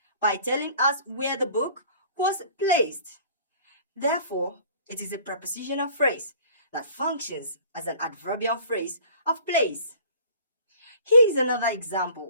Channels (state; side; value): inverted; both; correlation -0.49